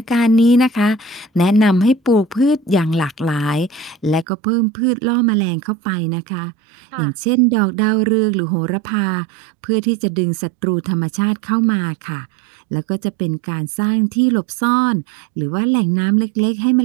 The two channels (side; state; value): left; drops out; at 4.2 s